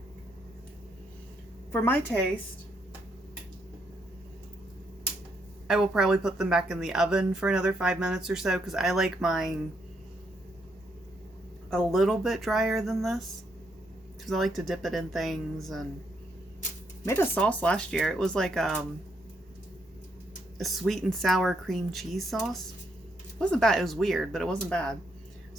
For my taste, I will probably put them back in the oven for another 5 minutes or so because I like mine a little bit drier than this because I like to dip it in things. And made a sauce last year. It was like a sweet and sour cream cheese sauce. It wasn't bad. It was weird, but it wasn't bad.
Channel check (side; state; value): both; normal; correlation 0.76